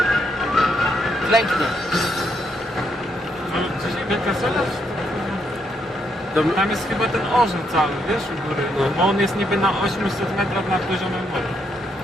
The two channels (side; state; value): both; normal; correlation 0.76